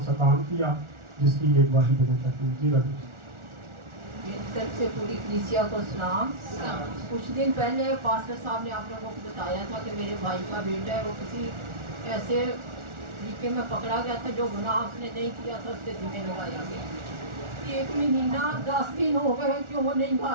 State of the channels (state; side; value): late; left; 1.4 ms